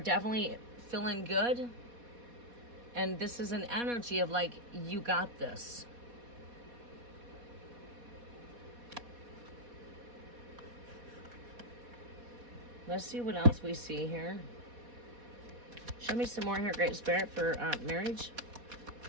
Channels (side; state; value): left; late; 4.2 ms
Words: definitely feeling good. And this is an energy of like, you got this. Let's see what else we see here. Show me some more here, Great Spirit, for marriage.